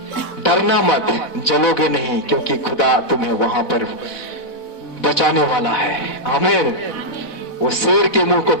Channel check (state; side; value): late; right; 4.1 ms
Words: डरना मत, जलोगे नहीं, क्योंकि खुदा तुम्हें वहां पर बचाने वाला है। आमीन। वो शेर के मुंह को